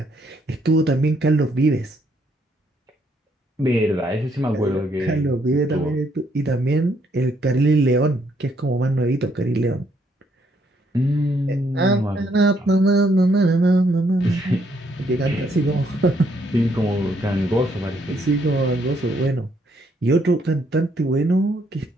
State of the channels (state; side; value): normal; both; correlation 0.71